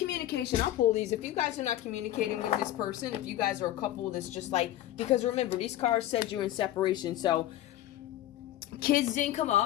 I'll pull these. If you guys are not communicating with this person, if you guys are a couple that's just like, because remember, these cards said you're in separation. So Kids didn't come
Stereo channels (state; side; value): quieter; right; 13.7 dB